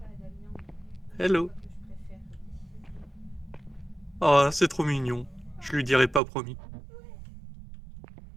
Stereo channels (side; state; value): left; drops out; at 6.2 s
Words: Hello. Oh, c'est trop mignon. Je lui dirai pas promis.